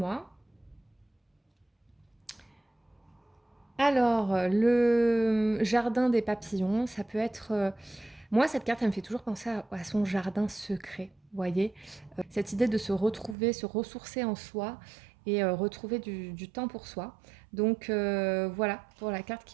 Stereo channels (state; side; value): drops out; left; at 13.4 s